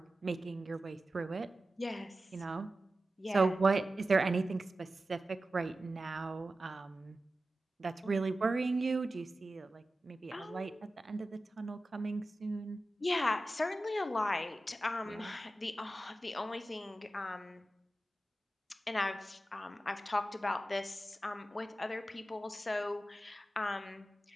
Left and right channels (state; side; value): normal; both; correlation 0.94